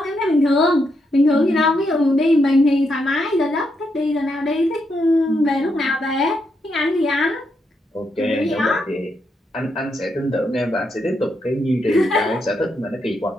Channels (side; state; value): both; normal; correlation 0.80